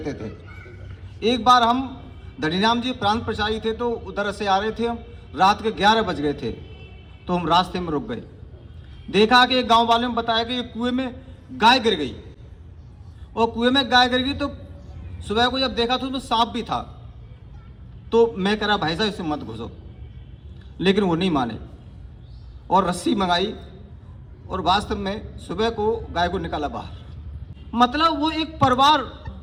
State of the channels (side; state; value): both; identical; correlation 1.00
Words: थे। एक बार हम धनीराम जी प्रांत प्रचारी थे तो उधर से आ रहे थे, हम रात के 11 बज गए थे तो हम रास्ते में रुक गए। देखा कि एक गांव वाले ने बताया कि कुएं में गाय गिर गई, और कुएं में गाय गिर गई तो सुबह को जब देखा तो उसमें सांप भी था। तो मैं कह रहा भाई साहब इससे मत घुसो, लेकिन वो नहीं माने और रस्सी मंगाई और वास्तव में सुबह को गाय को निकाला बाहर। मतलब वो एक परिवार,